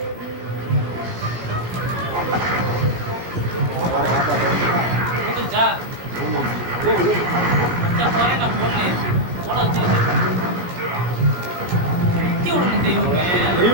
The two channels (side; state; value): left; late; 17 ms